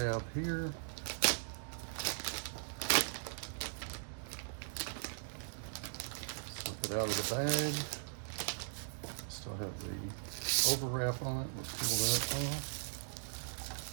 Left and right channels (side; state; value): left; silent; digital silence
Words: here. Slip it out of the bag. Still have the overwrap on it. We'll peel that off.